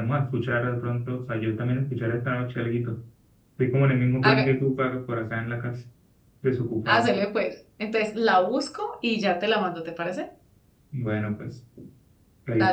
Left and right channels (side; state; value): both; identical; correlation 1.00